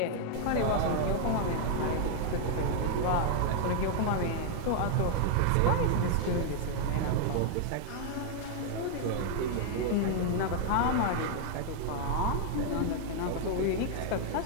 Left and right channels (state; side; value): different; both; correlation 0.00